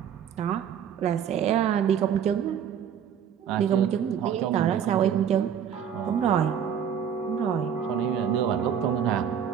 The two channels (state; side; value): quieter; left; 8.4 dB